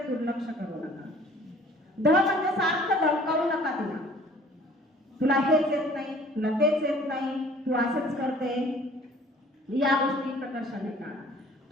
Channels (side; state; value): both; normal; correlation 0.52